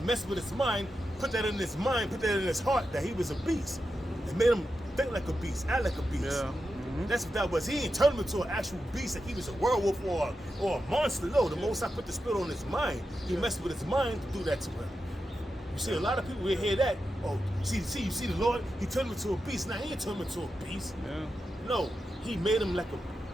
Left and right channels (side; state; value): both; normal; correlation 0.89